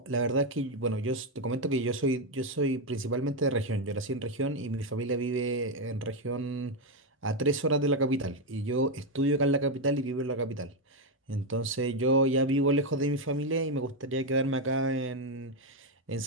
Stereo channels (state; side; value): normal; both; correlation 0.05